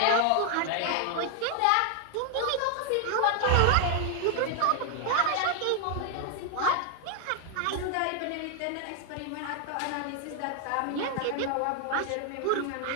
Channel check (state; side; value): different; both; correlation 0.00